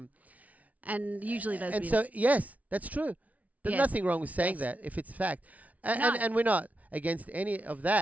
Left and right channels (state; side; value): late; left; 0.070 ms